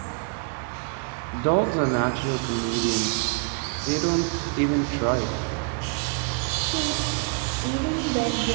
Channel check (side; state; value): left; quieter; 36.9 dB